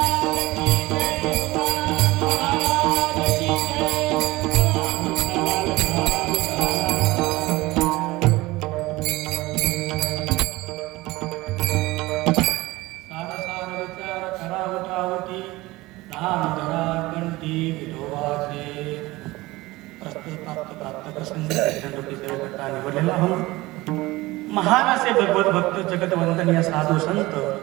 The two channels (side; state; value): left; quieter; 20.0 dB